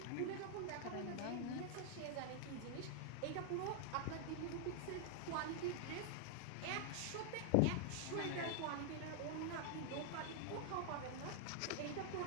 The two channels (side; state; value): both; different; correlation 0.00